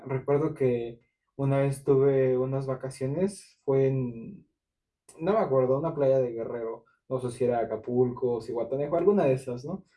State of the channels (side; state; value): both; identical; correlation 1.00